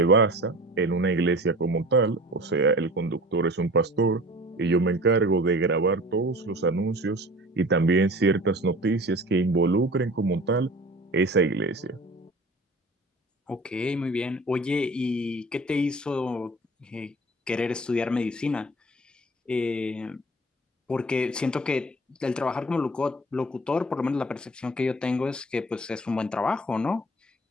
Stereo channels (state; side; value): normal; both; correlation 0.42